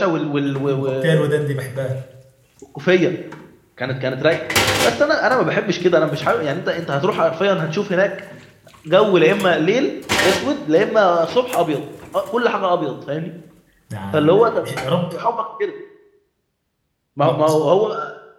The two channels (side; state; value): both; identical; correlation 1.00